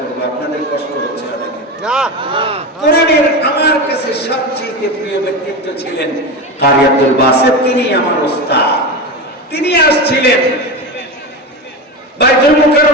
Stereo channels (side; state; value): both; normal; correlation 0.21